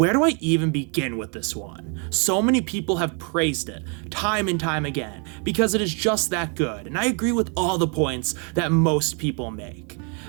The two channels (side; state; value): left; quieter; 37.6 dB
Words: do I even begin with this one? So many people have praised it time and time again because it is just that good, and I agree with all the points that most people make.